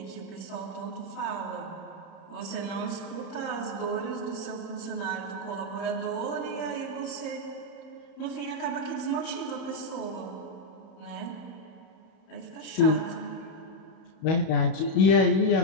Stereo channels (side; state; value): right; late; 31 ms